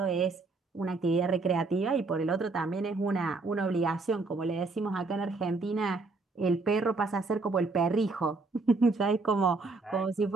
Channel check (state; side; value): quieter; left; 3.7 dB